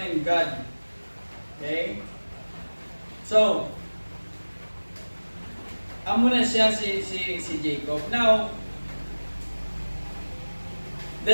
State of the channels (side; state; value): both; inverted; correlation -1.00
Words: in God. Okay? So, amo na siya si Jacob. Now, the